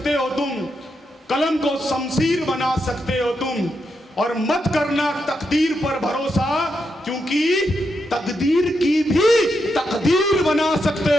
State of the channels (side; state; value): both; normal; correlation 0.83